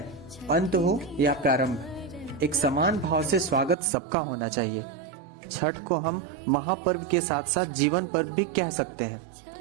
अंत हो या प्रारंभ, एक समान भाव से स्वागत सबका होना चाहिए। छठ को हम महापर्व के साथ साथ जीवन पर्व भी कह सकते हैं,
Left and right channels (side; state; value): left; drops out; at 3.8 s